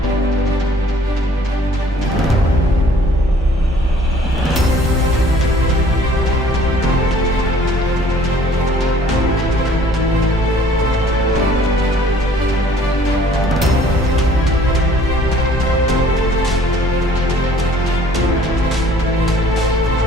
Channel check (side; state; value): both; normal; correlation 0.55